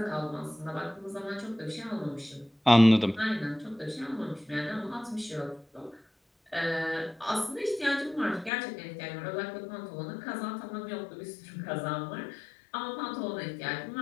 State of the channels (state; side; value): drops out; right; at 8.5 s